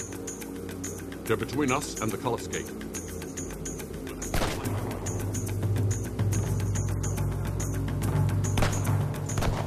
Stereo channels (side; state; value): both; identical; correlation 1.00